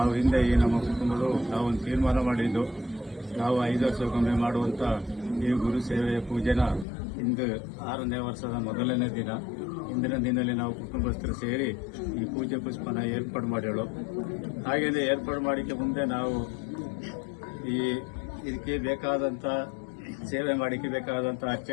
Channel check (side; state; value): right; drops out; at 6.9 s